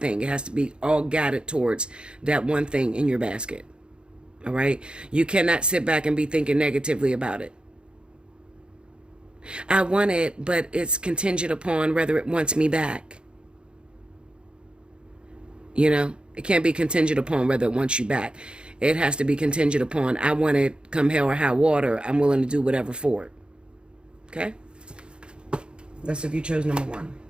It has to be all guided towards that one thing in your basket. All right? You cannot sit back and be thinking negatively about it. I want it, but it's contingent upon whether it wants me back. You know, it can't be contingent upon whether it wants you back. It has to be contingent upon, I want it come hell or high water. I'm willing to do whatever for it. Okay? That's if you chose number 1.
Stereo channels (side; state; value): left; late; 0.053 ms